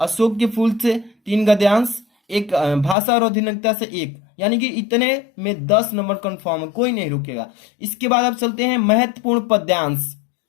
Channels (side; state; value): right; drops out; at 3.0 s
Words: के फूल से 3 गद्यांश, एक भाषा और आधुनिकता से 1, यानी कि इतने में 10 नंबर कंफर्म है, कोई नहीं रुकेगा। इसके बाद अब चलते हैं महत्वपूर्ण पद्यांश।